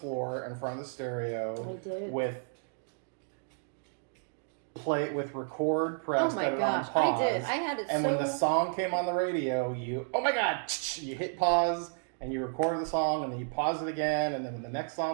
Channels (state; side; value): silent; left; 57 dB below the other